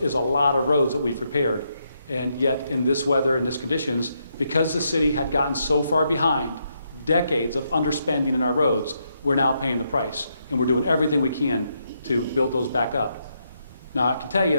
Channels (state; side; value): inverted; both; correlation -0.79